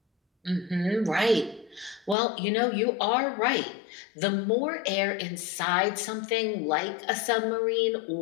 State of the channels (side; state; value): right; drops out; at 2.1 s